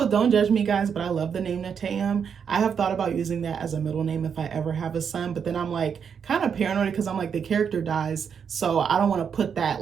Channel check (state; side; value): quieter; left; 7.1 dB